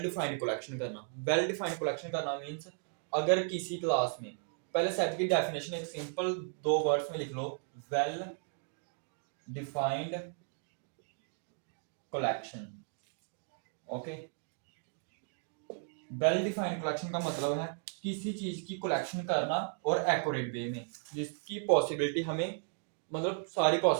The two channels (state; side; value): silent; left; 54 dB below the other